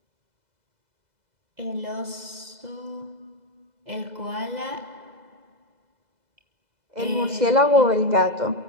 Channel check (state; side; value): late; left; 2.0 ms